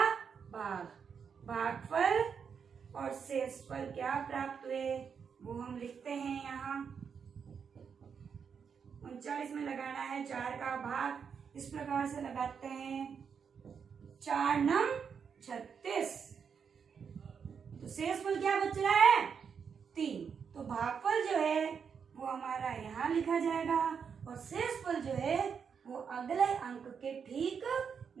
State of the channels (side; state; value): left; quieter; 6.6 dB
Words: भाग। भागफल और शेषफल क्या प्राप्त हुए वो हम लिखते हैं यहाँ। 39 में लगाना है 4 का भाग। इस प्रकार से लगाते हैं 4 नम 36। तो शेषफल क्या बच रहा है? 3। तो भागफल जो है वो हमारा यहाँ लिखा जाएगा और शेषफल जो है वो अगले अंक के ठीक